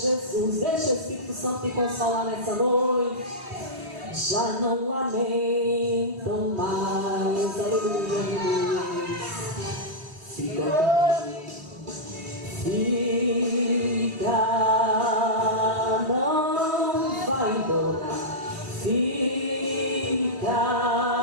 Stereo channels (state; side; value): late; left; 3.1 ms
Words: Deixa o Espírito Santo te consolar nessa noite. Já não lamentam mais. Aleluia. Fica, não vai embora. Fica,